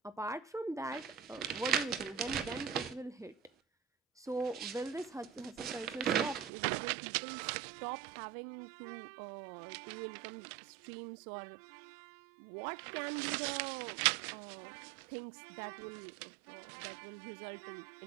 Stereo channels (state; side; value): drops out; left; at 6.5 s